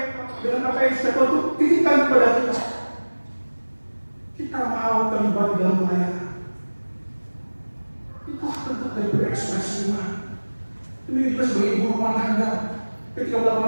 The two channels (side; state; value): both; inverted; correlation -1.00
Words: dengan apa yang sudah Tuhan titipkan kepada kita. Kita mau terlibat dalam pelayanan. Itulah bentuk dari berekspresi iman. Demikian juga sebagai ibu rumah tangga. Ketika